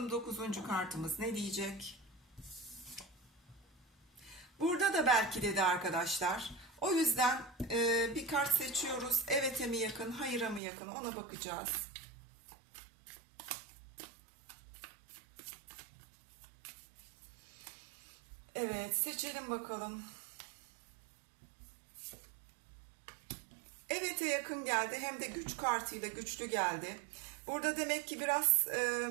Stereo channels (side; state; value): left; drops out; at 10.6 s